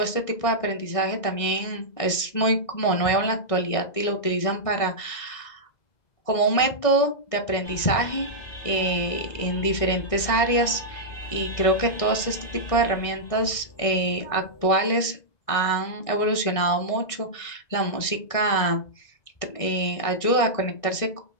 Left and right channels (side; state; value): right; late; 1.6 ms